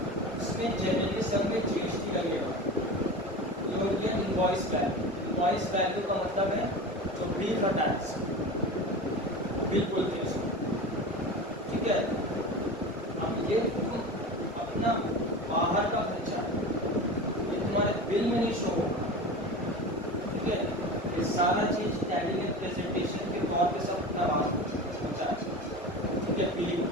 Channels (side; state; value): both; normal; correlation 0.30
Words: उसमें जनरली सब में जीएसटी लगेगा। ये हो गया इनवॉइस वैल्यू। इनवॉइस वैल्यू का मतलब है जो बिल का टैक्स, बिल बोलते हैं उसको, ठीक है। अब ये तुम अपना बाहर का खर्चा ये तुम्हारे बिल में नहीं शो होगा, ठीक है। ये सारा चीज टैली में प्रेजेंटेशन के तौर पे सब करवा होता है, ठीक है। बिलिंग,